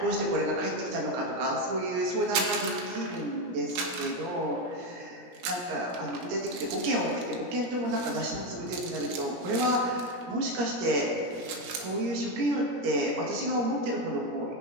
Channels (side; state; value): left; late; 17 ms